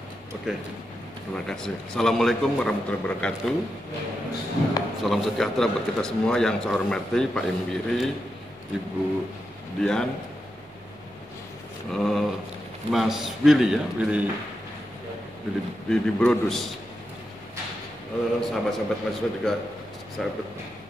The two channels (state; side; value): noise; right; hum, 27 dB below the sound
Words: Oke. Terima kasih. Assalamualaikum warahmatullahi wabarakatuh. Salam sejahtera buat kita semua yang saya hormati, Pak Imbiri, Ibu Dian, Mas Willy ya, Willy Brodus. Sahabat-sahabat mahasiswa juga